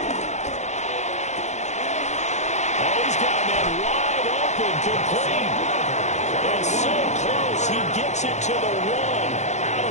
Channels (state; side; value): late; right; 0.33 ms